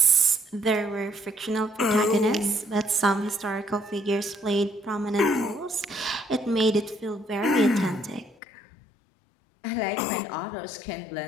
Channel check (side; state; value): right; drops out; at 8.3 s